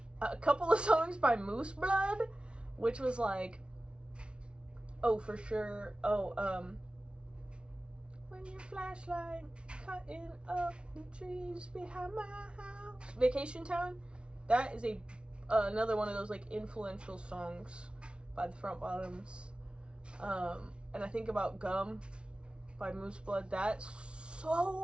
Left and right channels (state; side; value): late; left; 0.058 ms